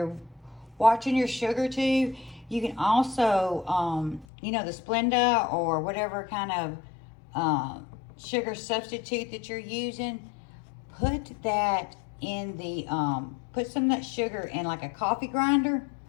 watching your sugar too. You can also, you know, the Splenda or whatever kind of sugar substitute that you're using, put that in the, put some of that sugar in like a coffee grinder,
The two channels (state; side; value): drops out; right; at 4.2 s